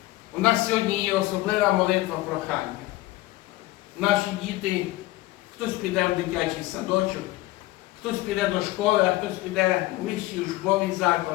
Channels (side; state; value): right; quieter; 18.3 dB